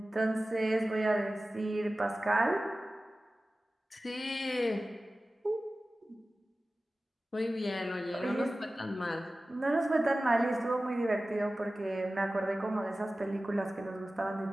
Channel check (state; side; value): normal; both; correlation 0.96